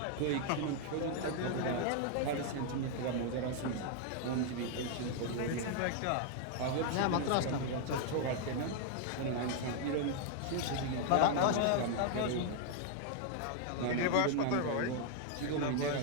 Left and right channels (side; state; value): both; different; correlation 0.00